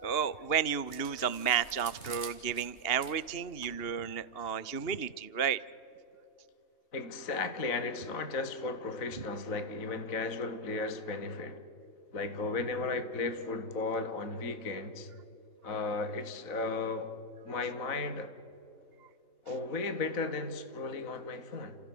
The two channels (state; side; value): late; right; 3.1 ms